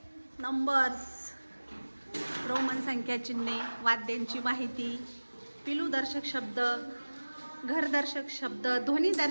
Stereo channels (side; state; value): both; inverted; correlation -1.00